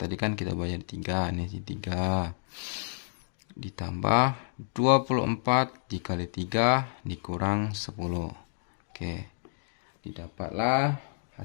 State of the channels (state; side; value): silent; right; digital silence